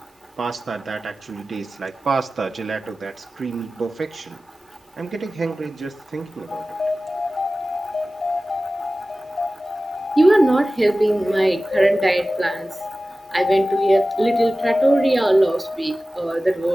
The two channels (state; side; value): normal; both; correlation 0.96